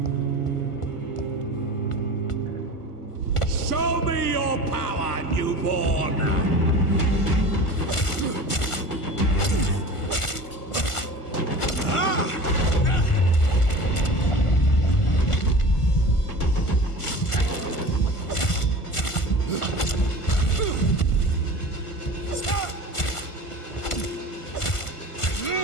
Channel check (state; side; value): late; right; 1.5 ms